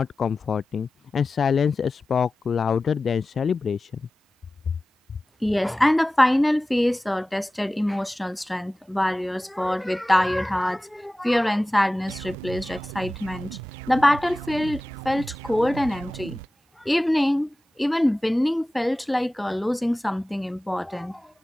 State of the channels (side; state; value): both; normal; correlation 0.96